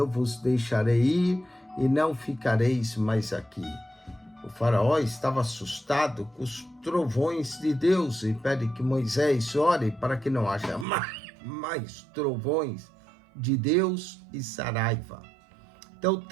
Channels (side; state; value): left; drops out; at 10.9 s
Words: vos deixarei ir, e não ficareis mais aqui. O faraó estava assustado com os trovões de Deus e pede que Moisés ore para que não haja mais trovões de Deus e saraiva. Então